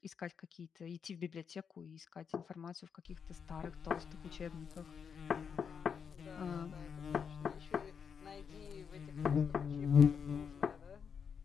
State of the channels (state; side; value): quieter; right; 6.7 dB